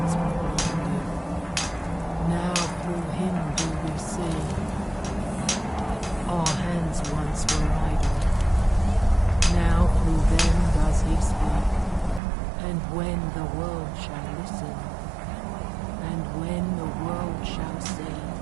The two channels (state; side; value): drops out; left; at 12.2 s